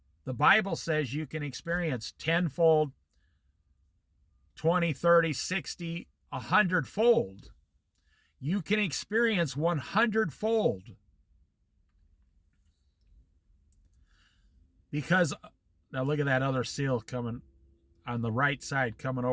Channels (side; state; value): both; identical; correlation 1.00